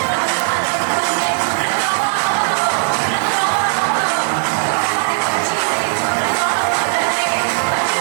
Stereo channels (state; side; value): silent; left; digital silence